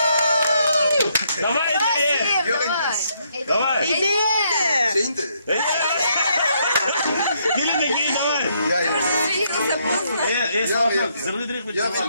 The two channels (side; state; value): both; inverted; correlation -0.73